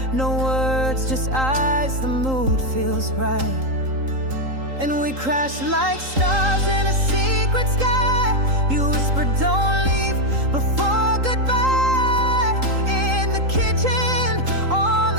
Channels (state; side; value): late; left; 3.8 ms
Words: no words, just eyes, the mood feels right. And we crash like stars in a secret sky. You whisper, don't leave before goodbye. In the kitchen, on